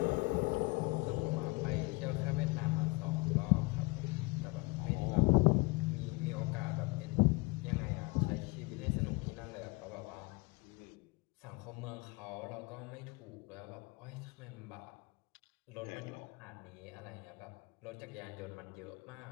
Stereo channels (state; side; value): quieter; right; 25.8 dB